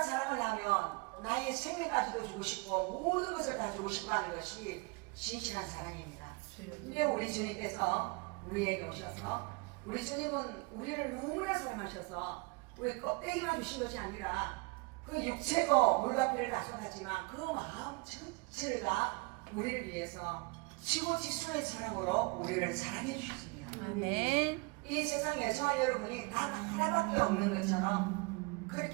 사랑을 하면 나의 생명까지도 주고 싶고 모든 것을 다 주고 싶어 하는 것이 진실한 사랑입니다. 근데 우리 주님께서 우리에게 오셔서 우리 주님은 우리를 너무나 사랑하셔서 우리 껍데기만 주신 것이 아니라 그 육체고 물과 피를 다 쏟았지만 그 마음 전체를 다 우리를 위해서 지고지순의 사랑으로 우리를 사랑해 주셨습니다. 아멘. 이 세상에 저와 여러분이 단 하나밖에 없는 것처럼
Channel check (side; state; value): left; quieter; 28.2 dB